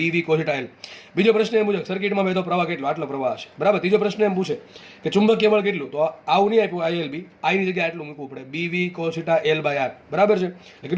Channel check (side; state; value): both; identical; correlation 1.00